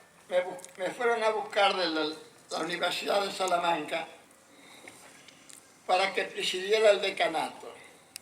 me fueron a buscar de la Universidad de Salamanca para que presidiera el decanato.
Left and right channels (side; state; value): both; identical; correlation 1.00